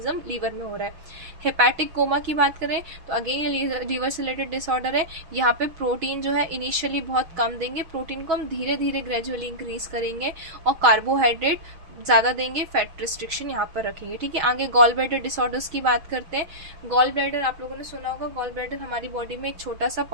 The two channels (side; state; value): left; late; 6.3 ms